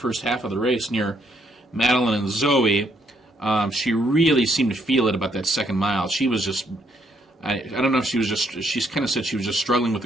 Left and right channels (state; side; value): normal; both; correlation 0.72